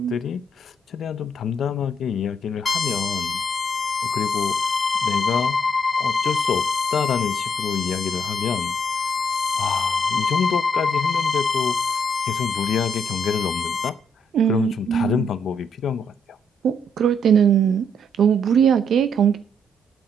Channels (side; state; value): both; normal; correlation 0.73